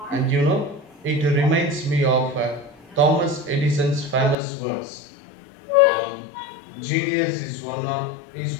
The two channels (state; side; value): drops out; right; at 4.4 s